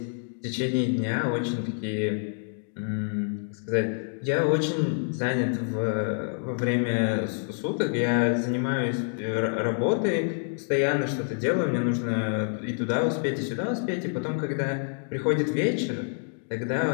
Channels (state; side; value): silent; right; 60 dB below the other